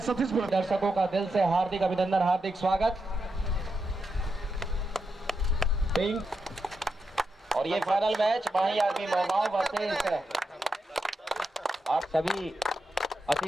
सतीश बोल। दर्शकों का दिल से हार्दिक अभिनंदन, हार्दिक स्वागत। पिंक और ये फाइनल मैच माही आर्मी मोहगांव वर्सेस आप सभी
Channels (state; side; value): normal; both; correlation 0.86